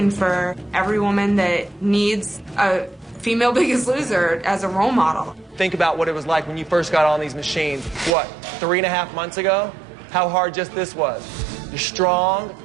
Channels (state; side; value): drops out; left; at 8.1 s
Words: for every woman that needs a female Biggest Loser as a role model. Think about what it was like when you first got on these machines. What, 3.5 months ago? How hard just this was. You're strong,